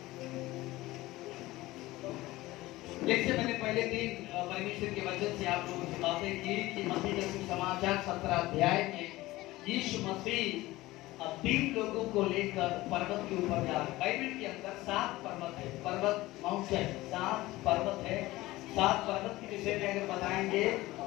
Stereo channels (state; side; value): quieter; right; 18.4 dB